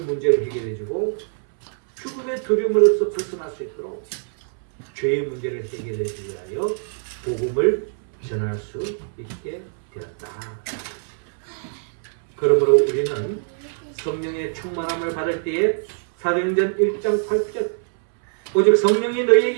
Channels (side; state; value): left; silent; 61 dB below the other